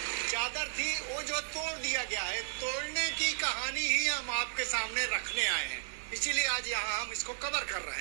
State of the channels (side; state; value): left; silent; digital silence